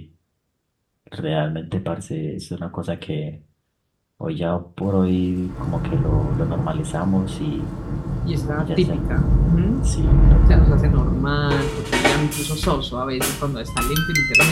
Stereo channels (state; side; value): identical; both; correlation 1.00